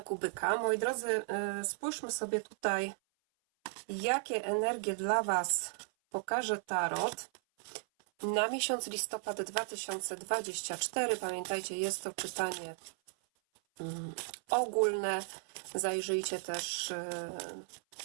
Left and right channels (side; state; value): left; silent; 54 dB below the other